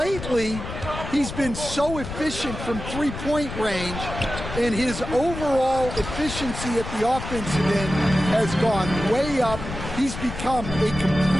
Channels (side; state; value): left; noise; rumble, 8 dB below the sound